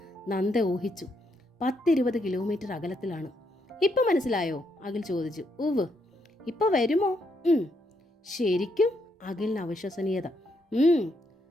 നന്ദ ഊഹിച്ചു. 10-20 കിലോമീറ്റർ അകലത്തിലാണ്. ഇപ്പം മനസ്സിലായോ? അഖിൽ ചോദിച്ചു. ഉവ്. ഇപ്പം വരുമോ? ശരിക്കും? അഖിലിന് അവിശ്വസനീയത.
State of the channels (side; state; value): both; normal; correlation 0.77